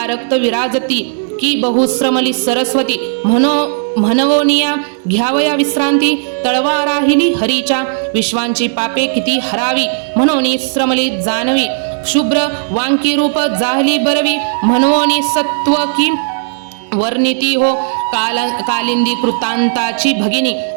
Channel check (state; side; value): silent; left; digital silence